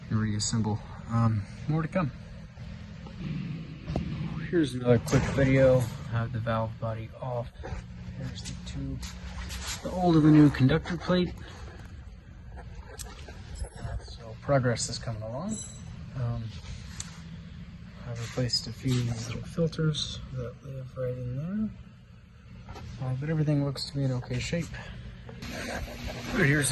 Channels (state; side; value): identical; both; correlation 1.00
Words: and reassemble. More to come. Here's another quick video. I have the valve body off. Here's the tube, the old and the new conductor plate. So progress is coming along. I've replaced a few little filters that live right in there. But everything looks to be in okay shape. Here's